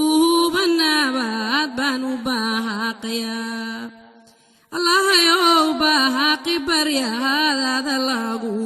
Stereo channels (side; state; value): both; identical; correlation 1.00